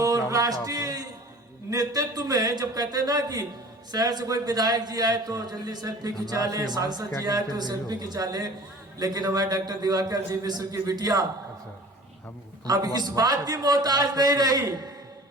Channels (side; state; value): both; normal; correlation 0.44